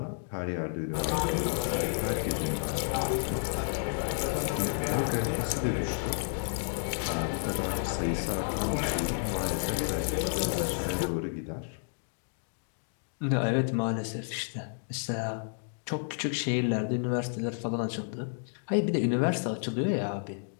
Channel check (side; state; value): right; silent; digital silence